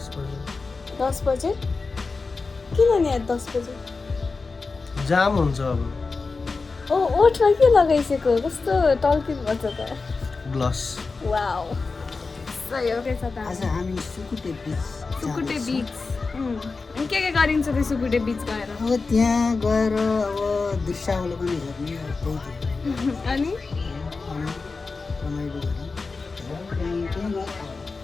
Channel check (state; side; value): quieter; right; 4.2 dB